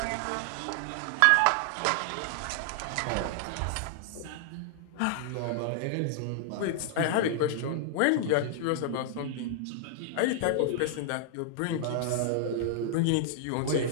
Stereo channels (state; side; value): different; both; correlation -0.01